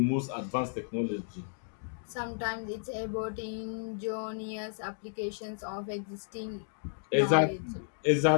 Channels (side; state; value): right; silent; digital silence